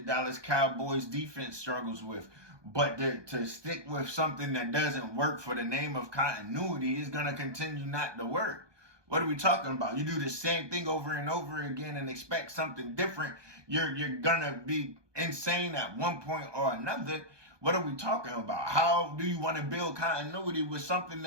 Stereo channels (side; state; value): left; late; 1.2 ms